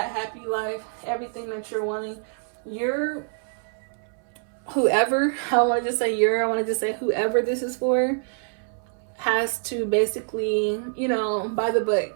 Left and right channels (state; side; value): silent; left; 61 dB below the other